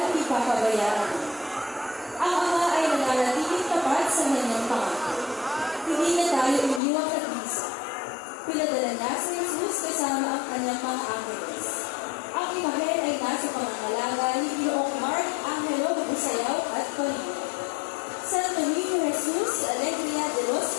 ipapabayaan. Ang Ama ay nananatiling tapat sa kanyang pangako. Hindi na tayo iniwang nag-isa. Pinadala niya si Jesus kasama ang kanyang mga angeles. Ang imahe ay nasa pangangalaga ni Ginoong Mark Angelo Busayaw at Colino. Santo Niño Jesus Alegria de Los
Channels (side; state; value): right; drops out; at 6.8 s